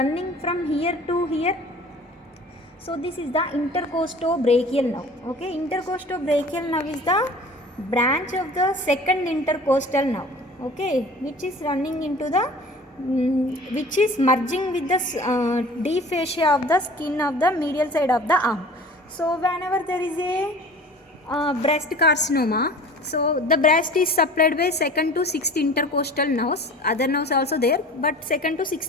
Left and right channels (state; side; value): normal; both; correlation 0.43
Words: from here to here? So this is the intercostobrachial nerve. Okay, intercostobrachial nerve is the branch of the second intercostal nerve. Okay, which is running into the, which is merging with the deep fascia of the skin of the medial side of the arm. So whenever there is a breast carcinoma, so the breast is supplied by second to sixth intercostal nerves. Other nerves also there, but second to